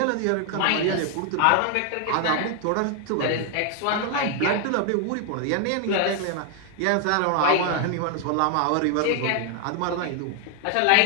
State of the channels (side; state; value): both; different; correlation 0.00